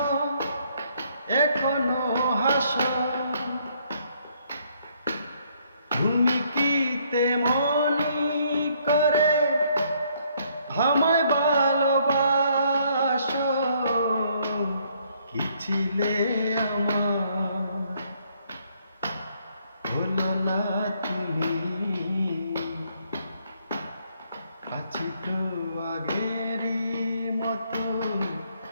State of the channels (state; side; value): inverted; both; correlation -0.68